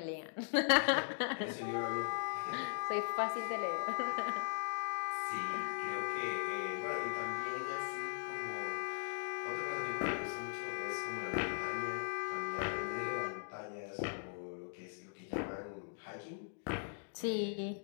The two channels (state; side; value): silent; right; digital silence